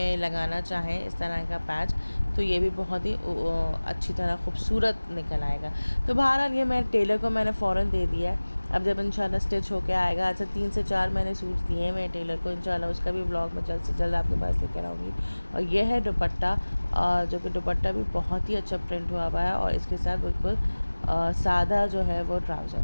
लगाना चाहें इस तरह का पैच तो ये भी बहुत ही अच्छी तरह खूबसूरत निकल आएगा। तो बहरहाल ये मैं टेलर को मैंने फ़ौरन दे दिया है। अब जब इंशाल्लाह स्टिच होके आएगा, अच्छा 3 से 4 मैंने सूट दिए हैं टेलर को, इंशाल्लाह उसका भी व्लॉग मैं जल्द से जल्द आपके पास लेकर आऊँगी। और ये है दुपट्टा, जो कि दुपट्टा भी बहुत ही अच्छा प्रिंट हुआ है और इसके साथ बिल्कुल सादा जो है वो ट्राउज़र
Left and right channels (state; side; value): inverted; both; correlation -1.00